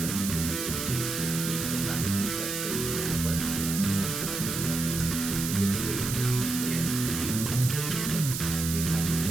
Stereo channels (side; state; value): right; noise; hiss, 4 dB below the sound